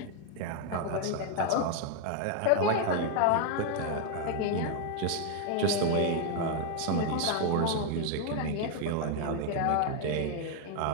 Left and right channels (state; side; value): different; both; correlation 0.00